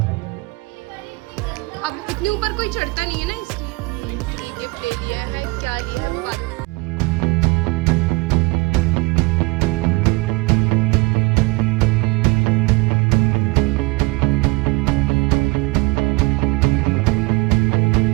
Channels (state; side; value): quieter; left; 25.1 dB